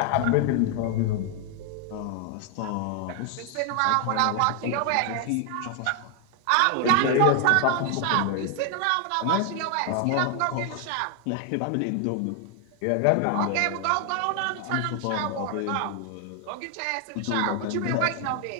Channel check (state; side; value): different; both; correlation 0.00